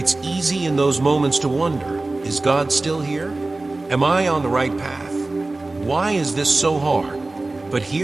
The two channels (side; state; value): left; quieter; 3.1 dB